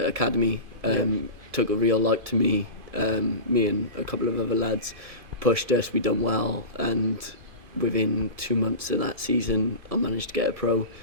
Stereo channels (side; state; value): left; late; 2.5 ms